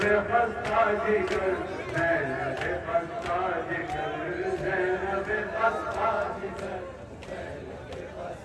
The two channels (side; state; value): both; identical; correlation 1.00